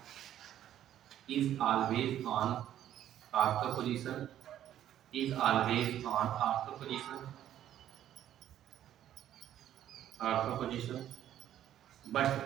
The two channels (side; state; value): left; quieter; 11.5 dB